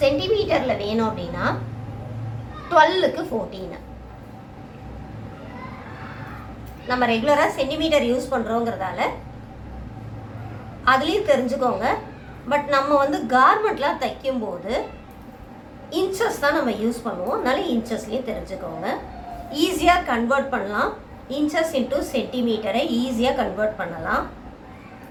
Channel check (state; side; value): identical; both; correlation 1.00